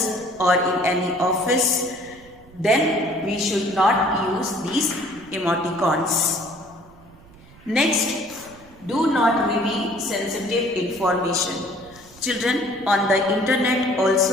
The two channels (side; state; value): right; noise; rumble, 24 dB below the sound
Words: or in any office, then we should not use these emoticons. Next, do not reveal sensitive information. Children, on the internet